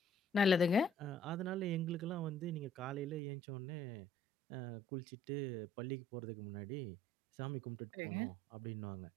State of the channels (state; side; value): drops out; left; at 3.2 s